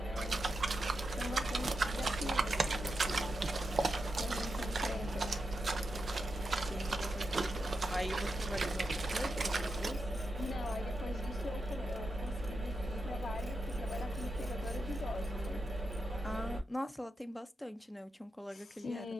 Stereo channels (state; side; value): normal; both; correlation 0.87